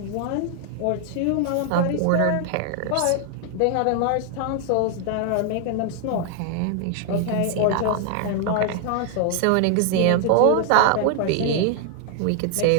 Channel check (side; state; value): both; different; correlation 0.00